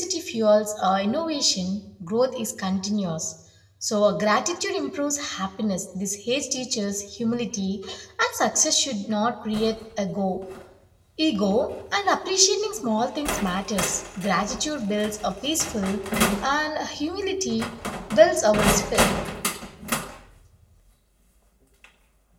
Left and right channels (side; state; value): both; identical; correlation 1.00